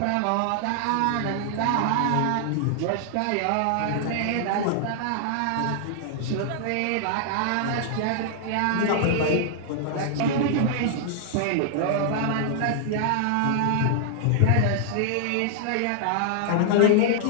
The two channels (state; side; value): different; both; correlation -0.01